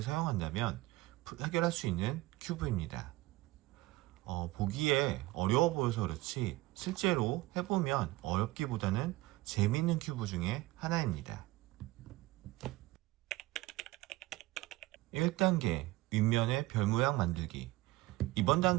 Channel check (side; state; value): left; quieter; 19.1 dB